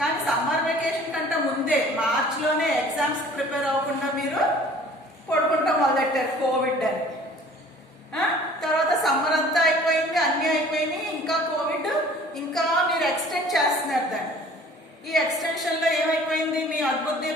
summer vacation కంటే ముందే మార్చిలోనే exams prepare అవ్వకుండా మీరు పడుకుంటాం మొదలెట్టారు Covid అని. తర్వాత సమ్మర్ అంతా అయిపోయింది, అన్నీ అయిపోయినాయి, ఇంకా కోవిడ్ ఇంకా మీరు ఎక్స్టెండ్ చేస్తున్నారు దాన్ని. ఈ ఎక్స్టెన్షన్లో ఏమైపోయింది? మీ అద్భుత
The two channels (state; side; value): normal; both; correlation 0.50